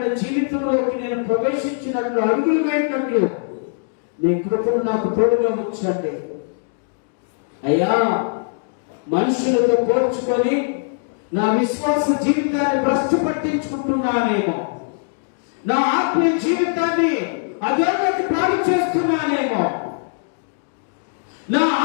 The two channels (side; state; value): right; silent; digital silence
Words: జీవితంలోకి నేను ప్రవేశించినట్లు, అడుగులు వేసినట్లు నీ కృపను నాకు తోడుగా ఉంచండి అయ్యా. మనుషులతో పోల్చుకొని నా విశ్వాస జీవితాన్ని భ్రష్టు పట్టించుకుంటున్నానేమో, నా ఆత్మీయ జీవితాన్ని అధోగతి పాలు చేస్తున్నానేమో, నా